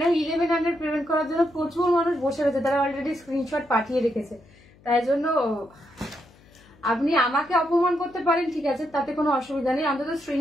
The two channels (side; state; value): left; noise; hum, 27 dB below the sound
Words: 1100 পেমেন্ট করার জন্য প্রচুর মানুষ বসে রয়েছে, তারা অলরেডি স্ক্রিনশট পাঠিয়ে রেখেছে। তাই জন্য আপনি আমাকে অপমান করতে পারেন, ঠিক আছে, তাতে কোনো অসুবিধা নেই। অন্তত